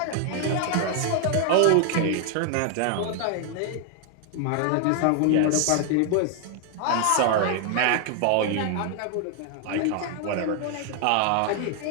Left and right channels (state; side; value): different; both; correlation 0.00